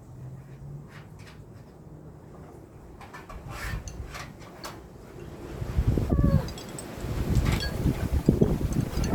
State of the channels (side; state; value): both; identical; correlation 1.00